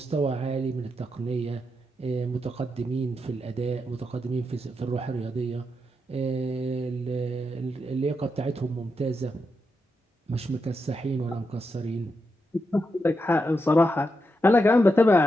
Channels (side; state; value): both; normal; correlation 0.85